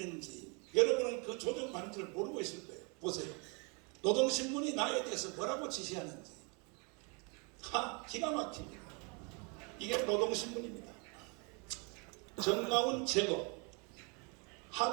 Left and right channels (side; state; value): left; quieter; 33.1 dB